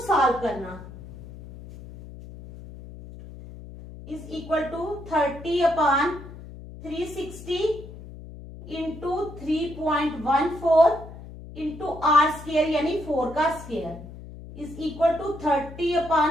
करना। Is equal to 30 upon 360 into 3.14 into r square यानी 4 का square is equal to 30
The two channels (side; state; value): left; noise; hum, 15 dB below the sound